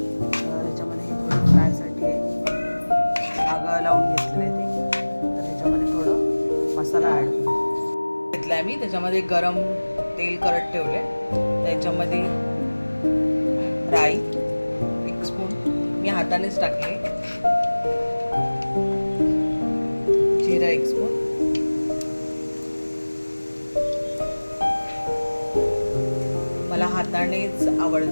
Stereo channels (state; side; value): inverted; both; correlation -1.00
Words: ह्याच्यामध्ये हे थोडं फ्रायसाठी आगं लावून घेतलेलं आहे ते. तर ह्याच्यामध्ये थोडं मसाला ॲड घेतला आहे मी. त्याच्यामध्ये गरम तेल करत ठेवले, त्याच्यामध्ये राई 1 स्पून मी हातानेच टाकले, जिरा 1 स्पून, मला हातानेच